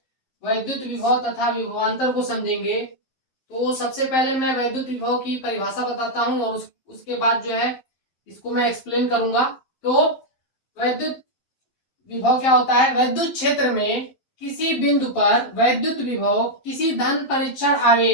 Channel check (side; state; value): right; late; 11 ms